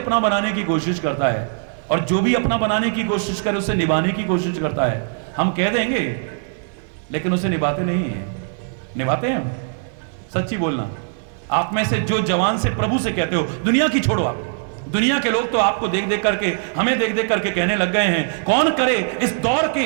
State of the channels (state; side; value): silent; left; digital silence